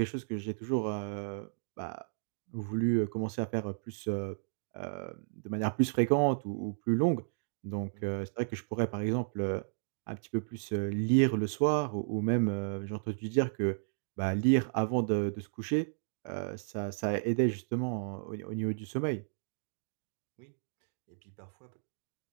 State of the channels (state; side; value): silent; left; digital silence